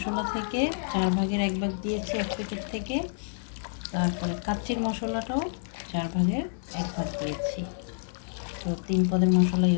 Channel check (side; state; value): right; silent; 58 dB below the other